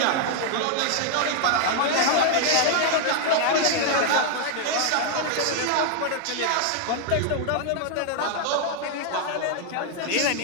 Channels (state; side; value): different; both; correlation 0.00